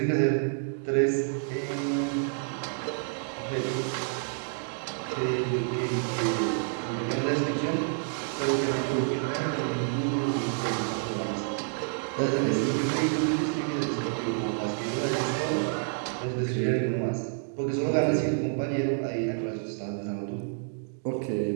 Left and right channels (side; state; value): left; silent; digital silence